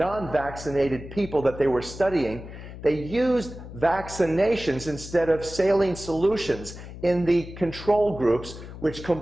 people that they were studying, they used vaccinations instead of saline solutions in the control groups, which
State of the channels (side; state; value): left; noise; hum, 13 dB below the sound